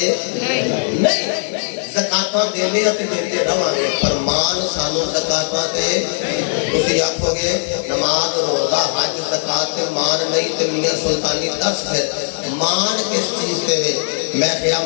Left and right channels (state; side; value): silent; right; 67 dB below the other